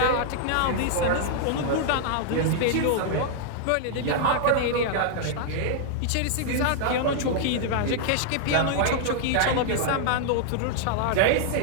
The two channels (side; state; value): both; different; correlation -0.01